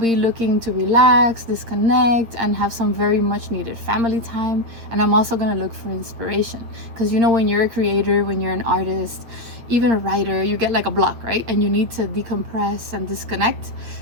looking to relax, disconnect, and have some very much needed family time. And I'm also going to look for inspiration because you know, when you're a creator, when you're an artist, even a writer, you get like a block, right? And you need to decompress and disconnect.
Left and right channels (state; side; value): late; left; 8.6 ms